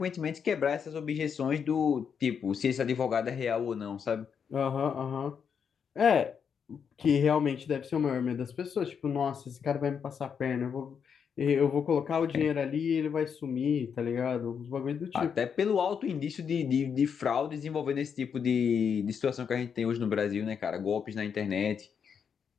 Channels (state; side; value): quieter; right; 7.0 dB